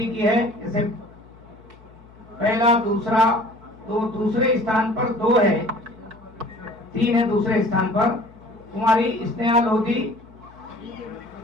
की है। जैसे पहला, दूसरा, दूसरे स्थान पर 2 है, 3 है दूसरे स्थान पर। कुमारी स्नेहा लोधी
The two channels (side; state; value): left; noise; hum, 24 dB below the sound